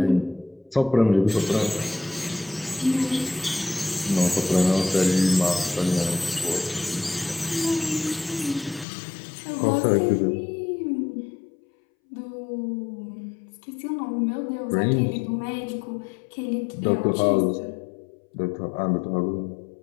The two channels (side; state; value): right; drops out; at 8.8 s